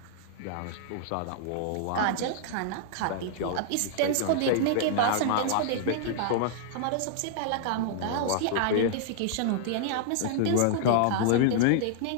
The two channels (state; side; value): different; both; correlation -0.01